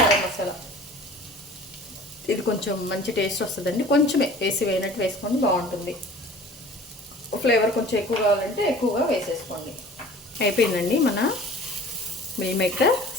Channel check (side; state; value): both; normal; correlation 0.45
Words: గరం మసాలా, ఇది కొంచెం మంచి టేస్ట్ వస్తుందండి. కొంచెమే వేసి వేయనట్టు వేసుకోండి, బాగుంటుంది. ఫ్లేవర్ కొంచెం ఎక్కువ కావాలంటే ఎక్కువగా వేసేసుకోండి. అయిపోయిందండి మన మిల్ మేకర్